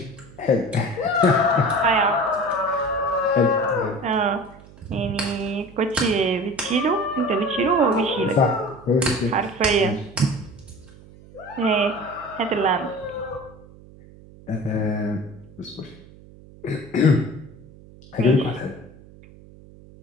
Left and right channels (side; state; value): right; noise; hum, 22 dB below the sound